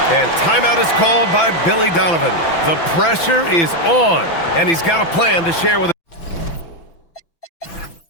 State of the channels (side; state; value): right; late; 6.0 ms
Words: And timeout is called by Billy Donovan. The pressure is on, and he's got a plan to share with